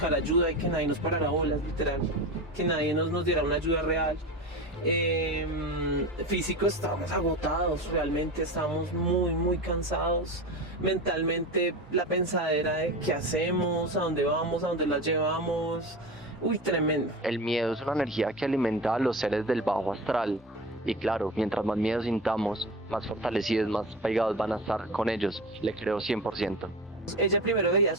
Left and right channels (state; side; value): normal; both; correlation 0.28